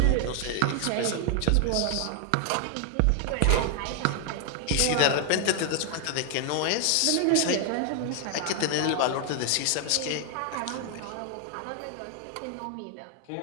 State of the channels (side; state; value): both; different; correlation 0.00